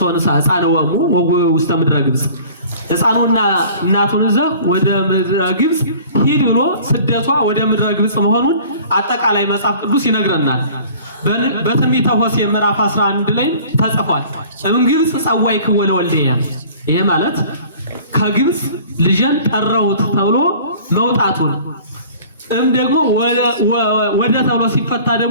ሕፃንወሙ ውስተ ምድረ ግብጽ ሕፃኑና እናቱን ይዘህ ወደ ምድረ ግብጽ ሂድ ብሎ ስደቷ ወደ ምድረ ግብጽ መሆኑን አጠቃላይ መጽሐፍ ቅዱስ ይነግረናል። በትንቢተ ሆሴዕ ምዕራፍ 11 ላይ ተጽፏል። ግብጽ ጸዋዕክዎ ለወልድየ ይሄ ማለት ከግብጽ ልጅን ጠራሁት ተብሎ መውጣቱን ደግሞ ወደ ተብሎ ሲፈታ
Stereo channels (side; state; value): both; inverted; correlation -0.47